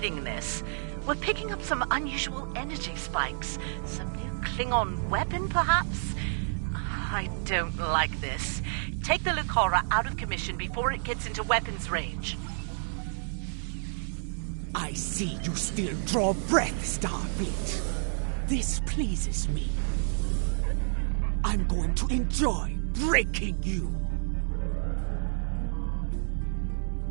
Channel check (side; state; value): left; silent; 58 dB below the other